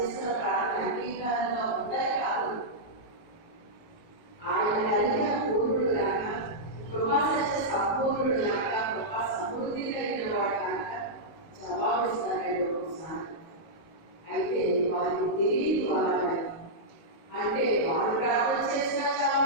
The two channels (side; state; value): right; late; 19 ms